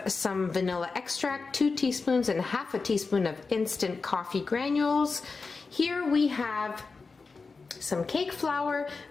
some vanilla extract, 2 teaspoons and half a teaspoon of instant coffee granules. Here we have some cake flour,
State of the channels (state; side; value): quieter; right; 4.4 dB